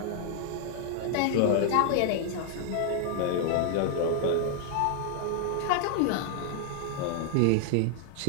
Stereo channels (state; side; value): different; both; correlation 0.00